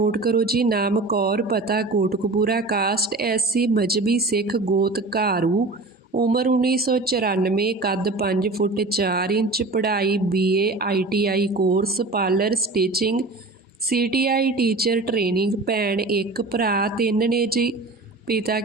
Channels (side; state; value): left; quieter; 3.2 dB